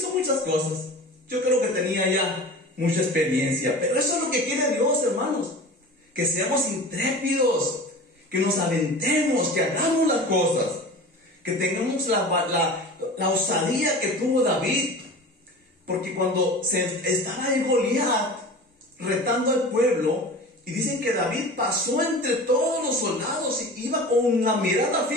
muchas cosas. Yo creo que tenía ya mucha experiencia. Pero eso es lo que quiere Dios, hermanos. Que seamos intrépidos. Que nos aventemos, que hagamos las cosas. Que tengamos la osadía que tuvo David. Porque cuando estaba en Goliat retando al pueblo, y dicen que David pasó entre todos los soldados y iba con la mirada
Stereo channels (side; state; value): both; normal; correlation 0.36